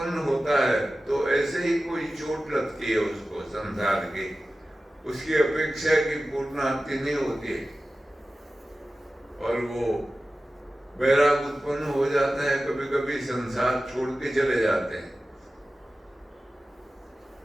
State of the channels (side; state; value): both; normal; correlation 0.95